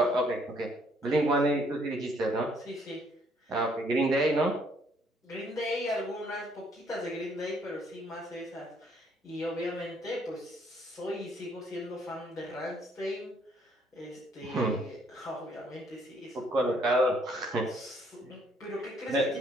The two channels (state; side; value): normal; both; correlation 0.66